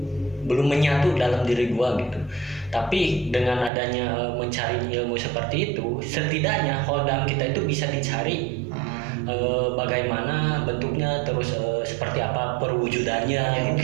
menyatu dalam diri gua gitu. Tapi dengan adanya mencari ilmu seperti itu, setidaknya hodam kita itu bisa dicari bagaimana bentuknya, terus seperti apa perwujudannya ya,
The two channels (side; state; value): left; drops out; at 3.7 s